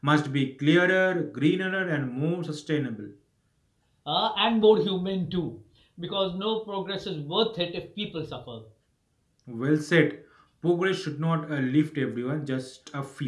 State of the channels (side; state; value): both; identical; correlation 1.00